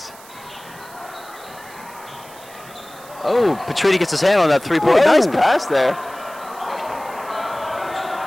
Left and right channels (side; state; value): right; noise; hiss, 21 dB below the sound